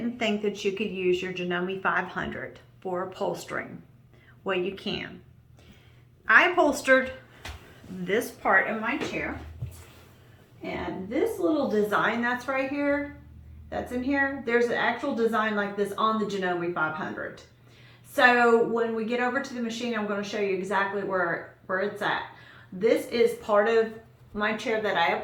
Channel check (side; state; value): both; identical; correlation 1.00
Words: think that you could use your Janome 500 for upholstering. Well, you can. I upholstered this part of my chair, and this little design that's right here, that's in here, there's an actual design like this on the Janome 500. So when we get over to the machine, I'm going to show you exactly where it's at. This is part of my chair that I